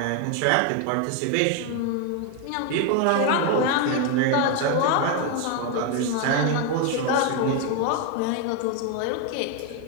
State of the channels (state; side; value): different; both; correlation 0.01